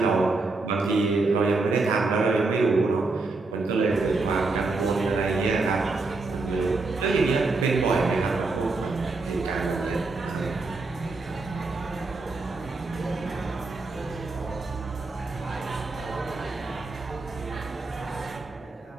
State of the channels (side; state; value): left; quieter; 3.6 dB